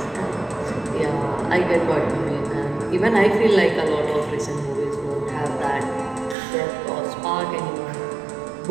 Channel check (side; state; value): left; drops out; at 6.4 s